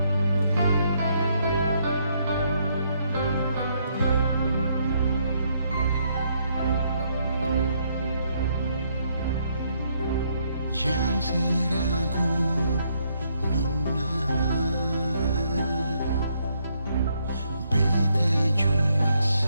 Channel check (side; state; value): both; inverted; correlation -0.73